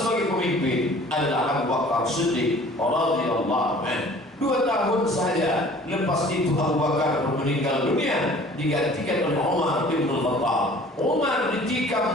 pemimpin adalah Abu Bakar Siddiq radhiyallahu anhu. 2 tahun saja lepas itu Abu Bakar meninggal dunia, digantikan oleh Umar bin Khattab. Umar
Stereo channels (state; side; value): normal; both; correlation 0.49